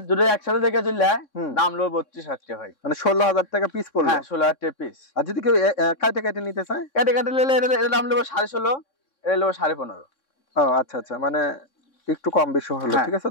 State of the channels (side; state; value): right; late; 3.6 ms